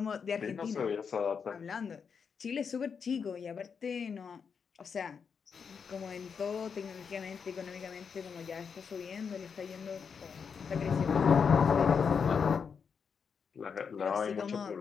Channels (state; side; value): quieter; right; 6.3 dB